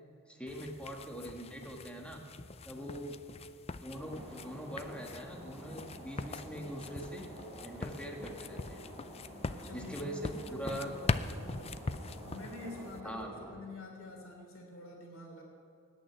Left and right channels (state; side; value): normal; both; correlation 0.57